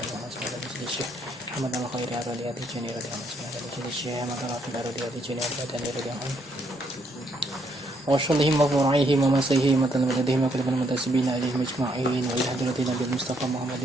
الله عنه بسيط الشيخ محمد الخير أرادي أبي جنير رضي الله عنه بسيط الشيخ محمد الرافع أرادي أبي جنير رضي الله عنه وشلهم وفرعيهم ومسيهم وتلمذهم وكلب المنتسبين إليهم أجمعين وإلى حضرة النبي المصطفى محمد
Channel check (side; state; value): both; normal; correlation 0.72